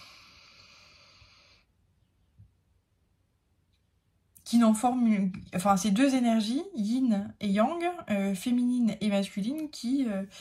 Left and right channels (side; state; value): both; identical; correlation 1.00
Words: qui n'en forment, enfin ces deux énergies, yin et yang, féminine et masculine, qui